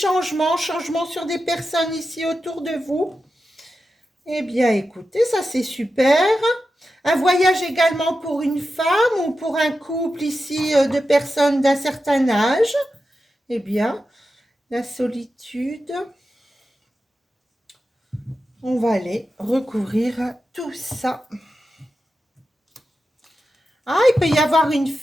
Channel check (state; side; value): normal; both; correlation 0.91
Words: sur des personnes ici autour de vous. Eh bien, écoutez, ça c'est super. Un voyage également pour une femme ou pour un couple ici de personnes d'un certain âge. Eh bien, la solitude. On va aller recouvrir tout ça. Ah, il peut y avoir une